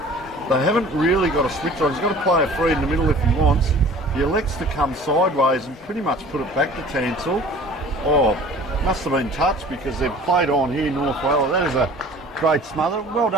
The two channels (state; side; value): normal; both; correlation 0.46